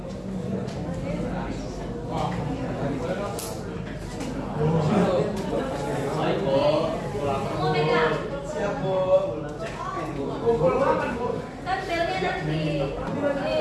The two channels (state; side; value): identical; both; correlation 1.00